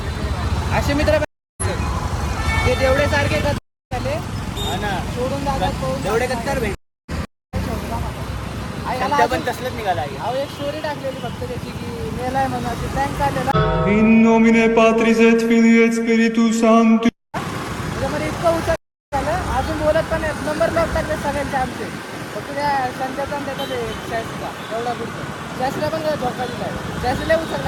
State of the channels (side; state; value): both; identical; correlation 1.00